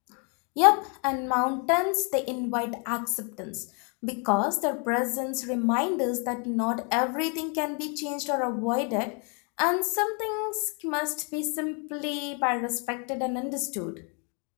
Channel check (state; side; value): quieter; right; 36.9 dB